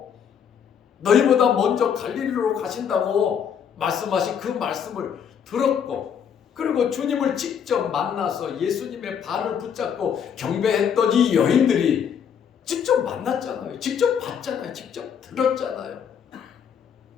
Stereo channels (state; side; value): quieter; right; 7.8 dB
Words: 너희보다 먼저 갈릴리로 가신다고 말씀하신 그 말씀을 들었고, 그리고 주님을 직접 만나서 예수님의 발을 붙잡고 경배했던 이 여인들이 직접 만났잖아요. 직접 봤잖아요. 직접 들었잖아요.